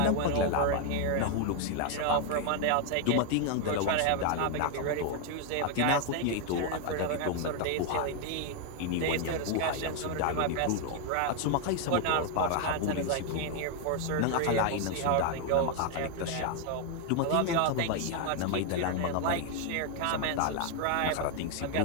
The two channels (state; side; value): different; both; correlation 0.00